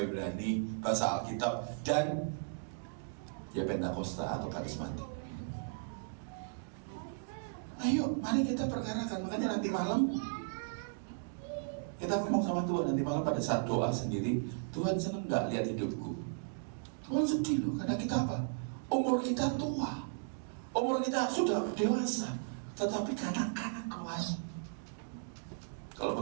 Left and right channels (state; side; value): silent; left; digital silence